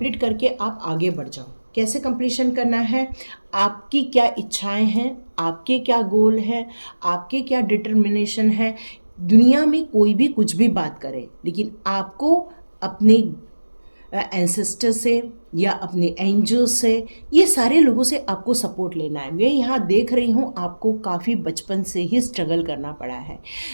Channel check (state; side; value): inverted; both; correlation -1.00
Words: करके आप आगे बढ़ जाओ। कैसे कंप्लीशन करना है? आपकी क्या इच्छाएं हैं, आपके क्या गोल हैं, आपके क्या डिटर्मिनेशन है। दुनिया में कोई भी कुछ भी बात करे, लेकिन आपको अपने एंसेस्टर से या अपने एंजल्स से, ये सारे लोगों से आपको सपोर्ट लेना है। मैं यहाँ देख रही हूँ आपको काफ़ी बचपन से ही स्ट्रगल करना पड़ा है।